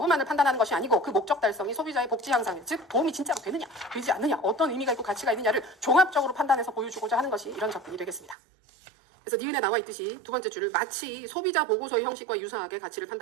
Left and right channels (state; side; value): drops out; left; at 8.3 s